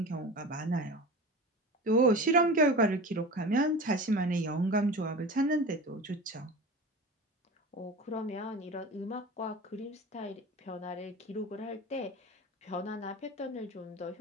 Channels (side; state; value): both; normal; correlation 0.33